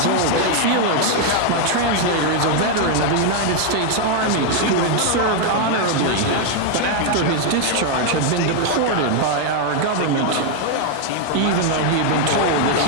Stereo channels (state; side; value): different; both; correlation 0.00